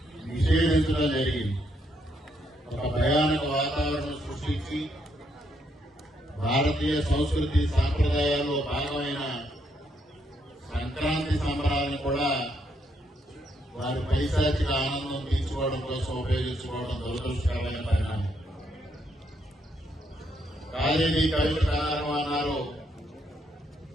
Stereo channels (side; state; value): both; normal; correlation 0.75